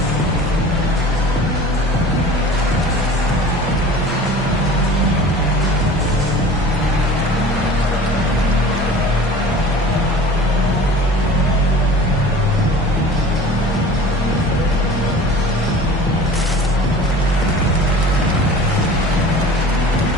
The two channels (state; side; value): normal; both; correlation 0.41